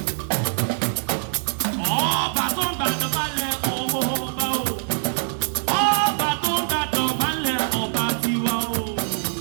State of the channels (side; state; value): left; silent; 56 dB below the other